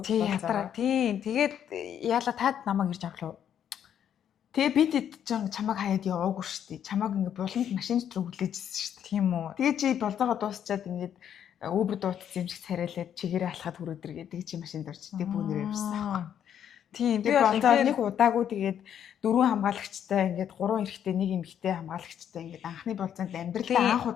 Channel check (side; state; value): right; quieter; 9.3 dB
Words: Тийм тэгээд яала таад намайг ирж авлаа. Тэгээ би тэд чамайг хаяад яваагүй шүү дээ. Чамайг ингээ буланд машин дотор хүлээжсэн шүү дээ. Тийм үү. Тэгээ чи болзоогоо дуусчаад ингээд Uber дуутсан юм шиг царайлаад чигээрээ алхаад хүрээдэр гэдэг чи машинд орч тэг бүүнээр явсан. Тийм би болзоо нэг удаагүй тэгээд 4 хамгаалагчтай ингээд 3 эрэгтэй нэг эмэгтэй хамгаалагчтай ингээд анхны болзоонд амьдралаа анх